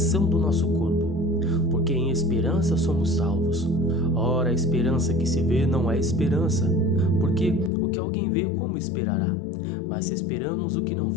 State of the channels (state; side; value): drops out; right; at 7.7 s